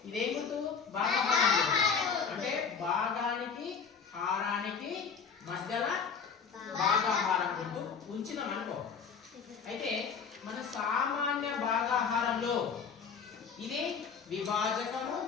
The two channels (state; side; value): quieter; right; 6.1 dB